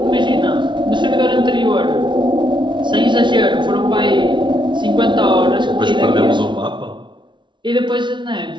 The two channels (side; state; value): left; late; 0.23 ms